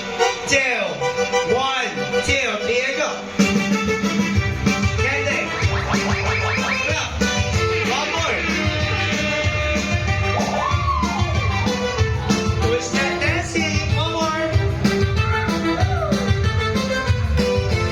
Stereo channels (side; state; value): both; identical; correlation 1.00